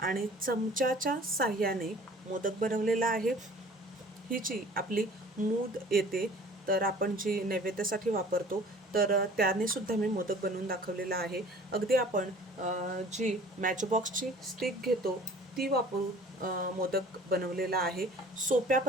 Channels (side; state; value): both; normal; correlation 0.48